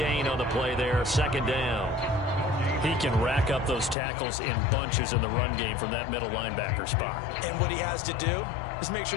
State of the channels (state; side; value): drops out; right; at 4.0 s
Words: on the play there, 2nd down. He can rack up those tackles in bunches in the run game from that middle linebacker spot. And what he has to do is make